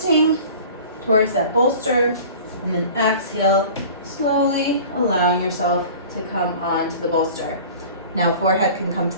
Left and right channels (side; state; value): both; inverted; correlation -0.42